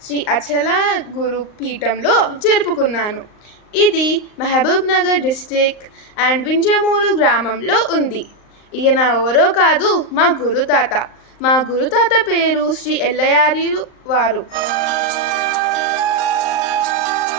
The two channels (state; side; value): late; right; 38 ms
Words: శ్రీ అచల గురు పీఠంలో జరుపుకున్నాను. ఇది మహబూబ్ నగర్ డిస్టిక్ అండ్ వింజమూరు గ్రామంలో ఉంది. ఈయన ఎవరో కాదు, మా గురుతాత. మా గురుతాత పేరు శ్రీ ఎల్లయార్యులు వారు.